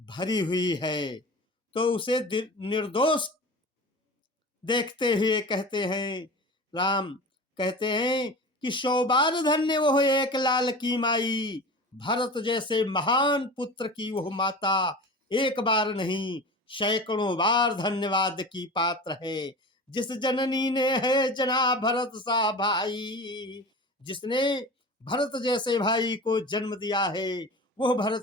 हुई है, तो उसे निर्दोष देखते हुए कहते हैं, राम कहते हैं कि 100 बार धन्य वो एक लाल की माई, भरत जैसे महान पुत्र की वह माता एक बार नहीं सैकड़ों बार धन्यवाद की पात्र है। जिस जननी ने है जना भरत सा भाई, जिसने भरत जैसे भाई को जन्म दिया है, वह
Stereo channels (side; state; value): both; normal; correlation 0.34